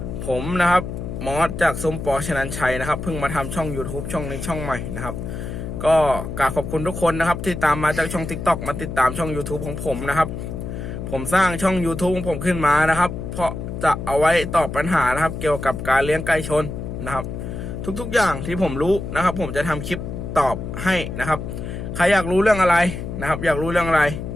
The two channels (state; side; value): noise; left; hum, 6 dB below the sound